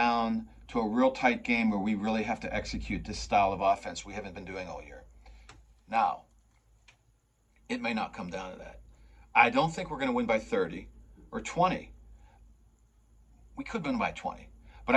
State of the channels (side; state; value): both; identical; correlation 1.00